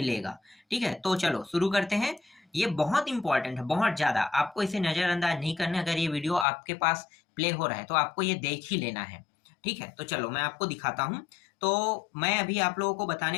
ठीक है, तो चलो शुरू करते हैं। ये बहुत इंपॉर्टेंट है, बहुत ज्यादा। आपको इसे नजरअंदाज नहीं करना। अगर ये वीडियो आपके पास प्ले हो रहा है तो आपको ये देख ही लेना है। ठीक है, तो चलो मैं आपको दिखाता हूँ। तो मैं अभी आप लोगों को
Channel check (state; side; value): drops out; right; at 6.5 s